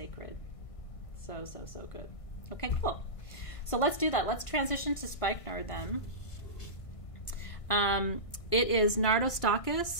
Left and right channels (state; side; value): late; right; 1.6 ms